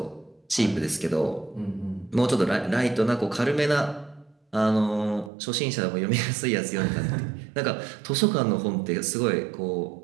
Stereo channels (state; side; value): drops out; left; at 5.3 s